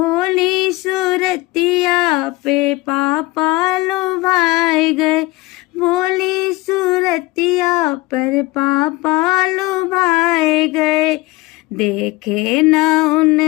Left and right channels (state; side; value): quieter; right; 21.2 dB